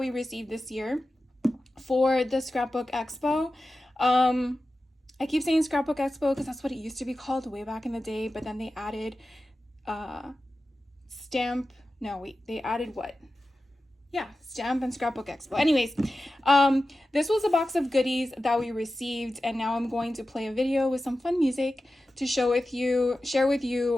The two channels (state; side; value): normal; both; correlation 0.93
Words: received this year for the Scrapbook Expo. I keep saying Scrapbook Expo because that's what it used to be called way back in the day, but then they added they added what? Yeah, Stamp and Scrapbook Expo. Anyways, this was a box of goodies that we received, and now I'm going to play a video with some fun music to share with